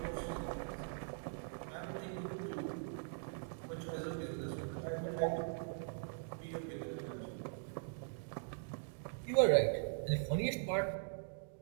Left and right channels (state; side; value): silent; left; digital silence